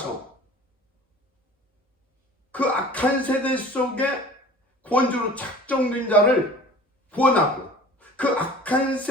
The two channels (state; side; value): normal; both; correlation 0.44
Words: 그 악한 세대 속에 구원주로 작정된 자를 구원하고, 그 악한